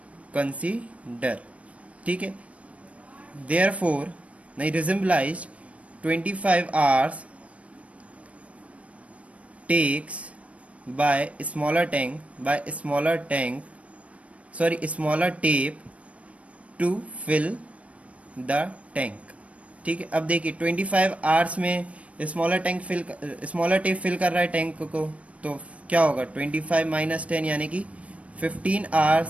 consider। ठीक है, therefore नहीं resemblized 25 hours takes by smaller tape to fill the tank। ठीक है, अब देखिए 25 hours में smaller tape fill कर रहा है टैंक को, तो क्या होगा, 25 माइनस 10 यानी कि 15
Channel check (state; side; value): late; left; 0.064 ms